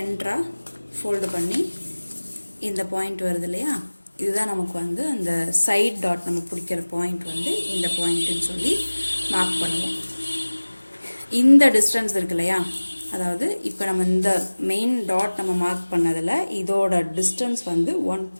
ஃபோல்டு பண்ணி இந்த பாயிண்ட் வருது இல்லையா, இதுதான் நமக்கு வந்து அந்த சைட் டாட் நம்ம பிடிக்கிற பாயிண்ட் வந்து இந்த பாயிண்ட்டுன்னு சொல்லி மார்க் பண்ணுவோம். இந்த டிஸ்டன்ஸ் இருக்கு இல்லையா, அதாவது இப்போ நம்ம இந்த மெயின் டாட் நம்ம மார்க் பண்ணதில் இதோட டிஸ்டன்ஸ் வந்து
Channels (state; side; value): inverted; both; correlation -1.00